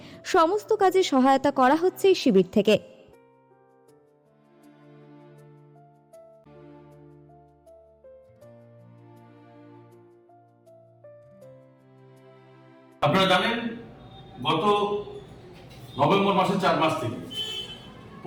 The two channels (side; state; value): both; identical; correlation 1.00